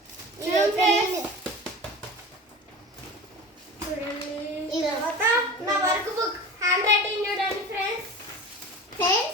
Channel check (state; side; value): normal; both; correlation 0.34